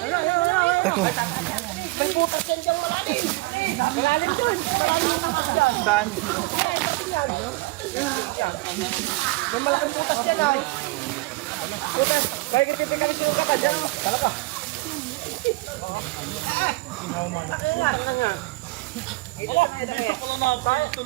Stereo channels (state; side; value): quieter; left; 22.5 dB